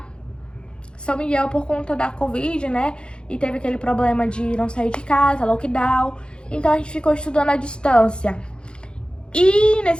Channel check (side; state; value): right; late; 0.052 ms